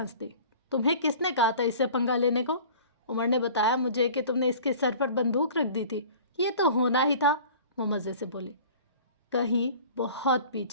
دی۔ تمہیں کس نے کہا تھا اس سے پنگا لینے کو؟ عمر نے بتایا مجھے کہ تم نے اس کے سر پر بندوق رکھ دی تھی، یہ تو ہونا ہی تھا، وہ مزے سے بولی۔ کہیں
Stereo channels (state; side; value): inverted; both; correlation -0.44